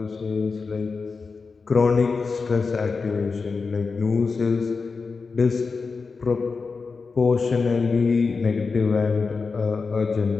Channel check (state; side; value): quieter; right; 4.6 dB